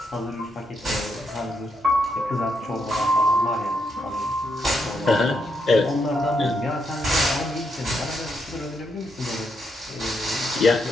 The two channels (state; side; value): normal; both; correlation 0.80